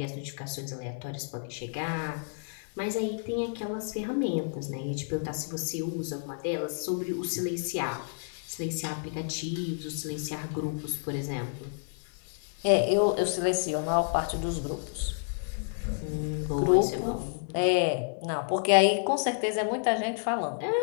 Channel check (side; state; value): right; silent; 58 dB below the other